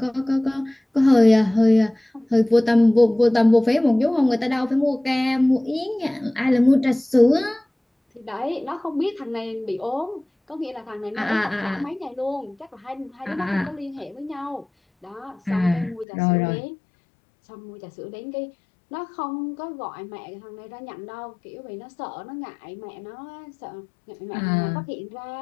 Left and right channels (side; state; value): right; drops out; at 16.1 s